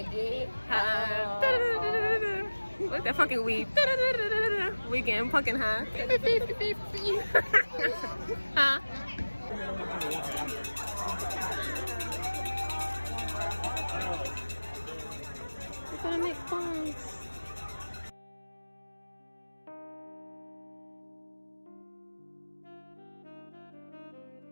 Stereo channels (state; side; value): inverted; both; correlation -1.00